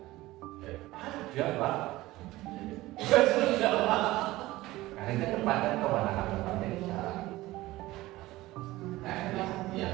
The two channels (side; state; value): left; quieter; 17.9 dB